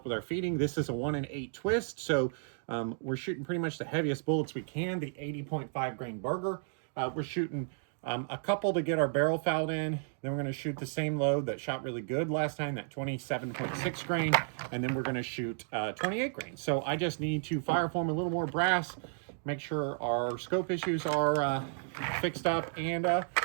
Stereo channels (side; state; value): left; silent; digital silence